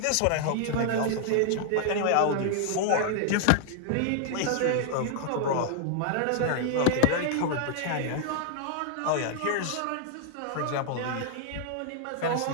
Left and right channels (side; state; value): both; different; correlation 0.00